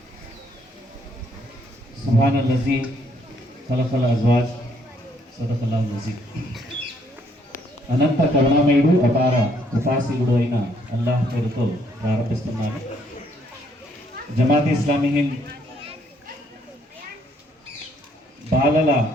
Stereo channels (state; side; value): normal; both; correlation 0.69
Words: सुब्हानल्लज़ी खलक़ल अज़वाज सदक़ल्लाहुल अज़ीम అనంత కరుణామయుడు అపార కృపాశీలుడు అయిన అల్లాహ్ పేరుతో ప్రారంభిస్తున్నాను. జమాత్ ఇస్లామీ హింద్ బాలల